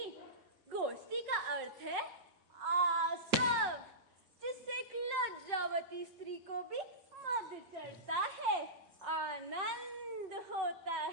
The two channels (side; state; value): both; normal; correlation -0.19